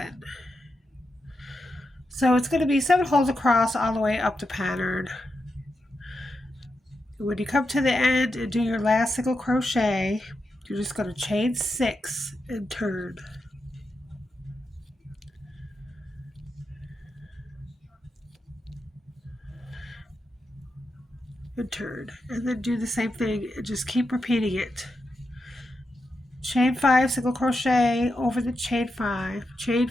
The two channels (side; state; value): both; normal; correlation 0.87